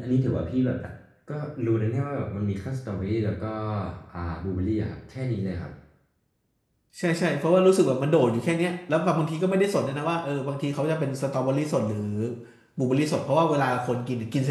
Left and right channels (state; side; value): identical; both; correlation 1.00